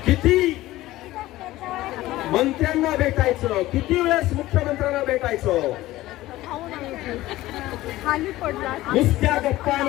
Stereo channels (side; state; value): right; quieter; 16.6 dB